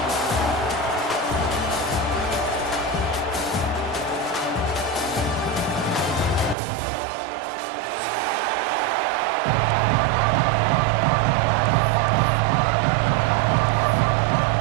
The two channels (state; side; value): drops out; left; at 6.6 s